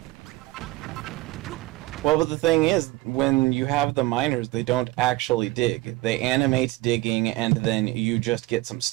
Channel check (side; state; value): left; quieter; 19.3 dB